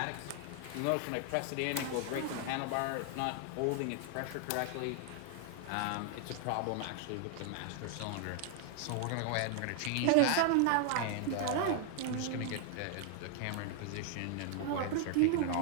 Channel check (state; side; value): different; both; correlation 0.00